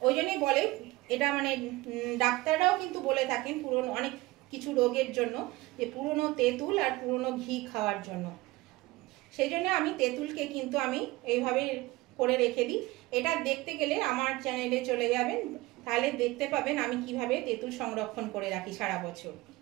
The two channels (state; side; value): quieter; left; 20.2 dB